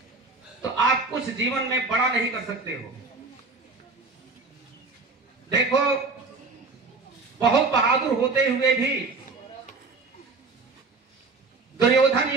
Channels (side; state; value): left; quieter; 3.9 dB